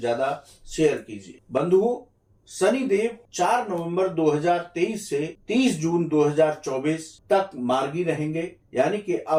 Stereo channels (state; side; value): identical; both; correlation 1.00